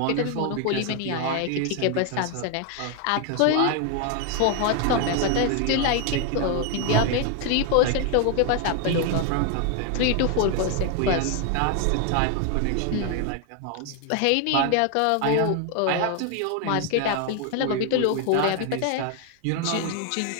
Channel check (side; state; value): both; different; correlation 0.01